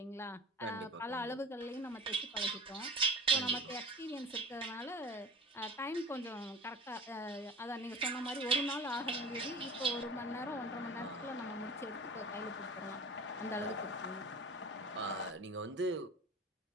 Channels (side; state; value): both; normal; correlation 0.37